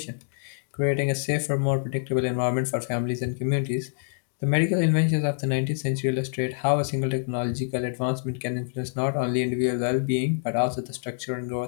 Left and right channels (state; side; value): silent; right; digital silence